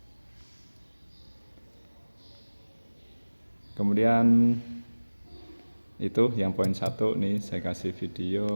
Kemudian itu yang poin 1 nih, saya kasih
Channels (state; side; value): inverted; both; correlation -1.00